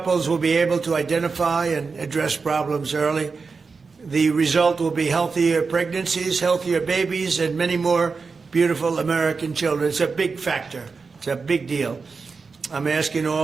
will be able to identify and address problems early. The result will be healthier pregnancies, healthier babies, and many more beautiful American children. It's a big factor. It's a big deal. I'm asking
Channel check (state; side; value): quieter; left; 4.7 dB